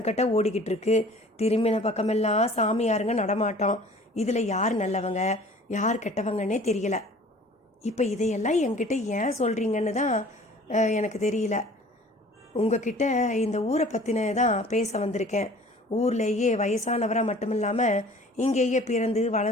ஓடிக்கிட்டு இருக்கு. திரும்பின பக்கமெல்லாம் சாமியாருங்க நடமாட்டோம். இதில் யார் நல்லவங்க யார் கெட்டவங்கன்னே தெரியல. இப்போ இதையெல்லாம் என்கிட்ட ஏன் சொல்கிறீங்கன்னு தான் எனக்கு தெரியல. உங்ககிட்ட இந்த ஊரை பற்றின தான் பேச வந்திருக்கேன். ஊர்லேயே வயசானவராக மட்டும் இல்லாமல் இங்கேயே பிறந்து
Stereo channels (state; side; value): normal; both; correlation 0.48